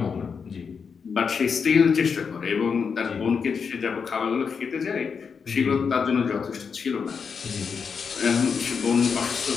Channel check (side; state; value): right; quieter; 6.0 dB